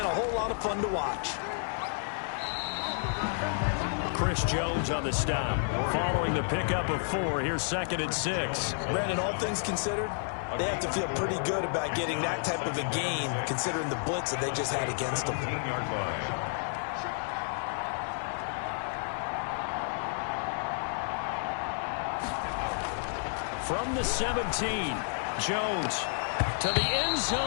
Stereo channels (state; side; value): silent; right; digital silence